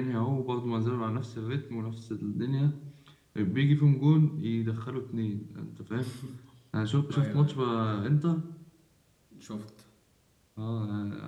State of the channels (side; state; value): both; identical; correlation 1.00